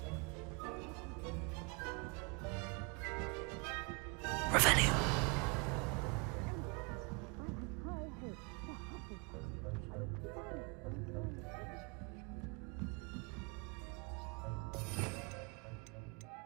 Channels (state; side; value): quieter; left; 31.0 dB